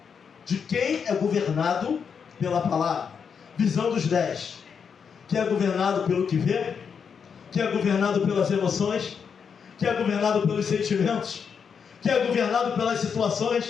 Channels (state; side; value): quieter; right; 6.6 dB